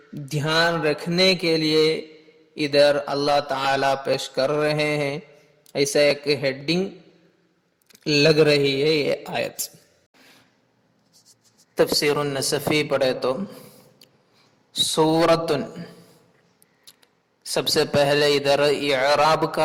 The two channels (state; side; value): identical; both; correlation 1.00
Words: دھیان رکھنے کے لیے ادھر اللہ تعالیٰ پیش کر رہے ہیں۔ ایسا ایک ہیڈنگ لگ رہی ہے یہ آیت۔ تفسیر النصفی پڑھے تو سورتن، سب سے پہلے ادھر اعراب